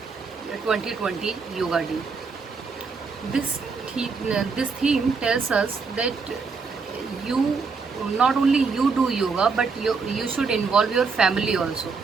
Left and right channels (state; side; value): quieter; left; 4.8 dB